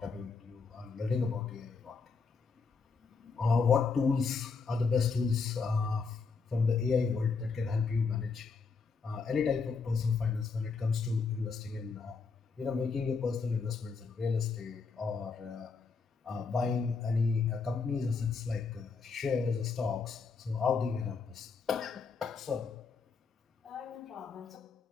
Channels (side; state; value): right; quieter; 4.9 dB